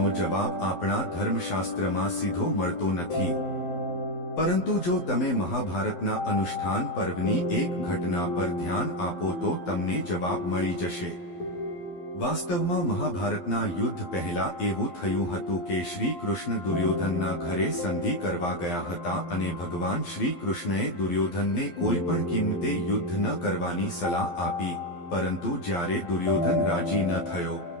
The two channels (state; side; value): late; right; 11 ms